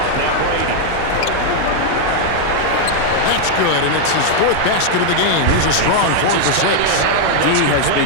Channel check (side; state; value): both; different; correlation 0.00